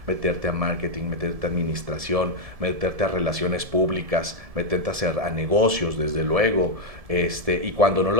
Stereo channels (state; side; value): late; left; 1.7 ms